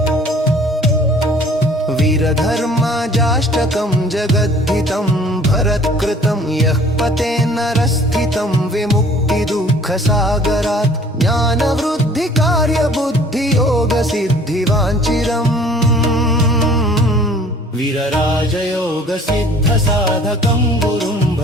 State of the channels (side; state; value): both; normal; correlation 0.53